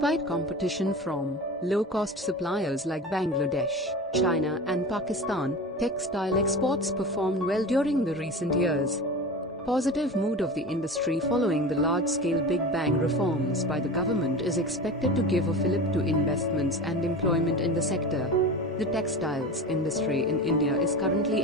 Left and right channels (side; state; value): both; normal; correlation 0.31